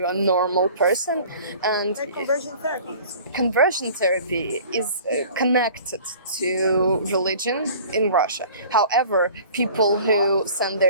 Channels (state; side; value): inverted; both; correlation -0.46